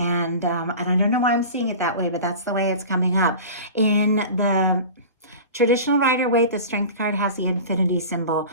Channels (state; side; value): inverted; both; correlation -0.35